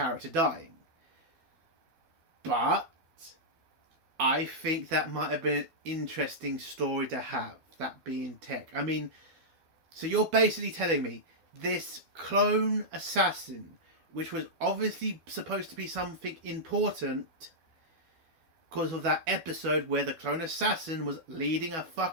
dying. But I think that might have been an interesting story to have, that being tech. I mean, so you're basically telling me this clone assassin, which was obviously supposed to be something important because of that episode where the clone assassin was leading a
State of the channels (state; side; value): late; left; 12 ms